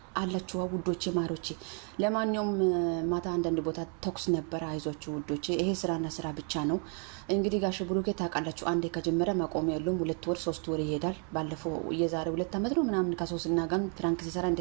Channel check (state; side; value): quieter; left; 39.8 dB